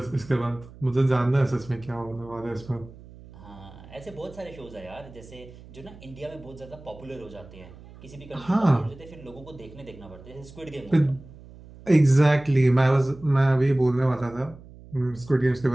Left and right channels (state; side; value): noise; right; hum, 19 dB below the sound